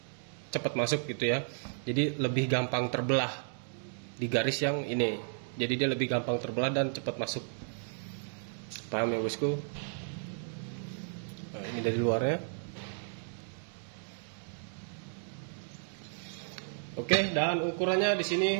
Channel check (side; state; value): left; silent; digital silence